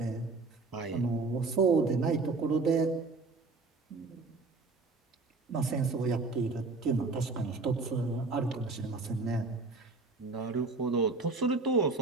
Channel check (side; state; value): left; quieter; 3.8 dB